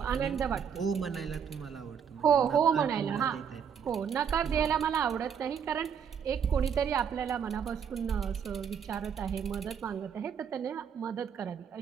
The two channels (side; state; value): left; quieter; 7.5 dB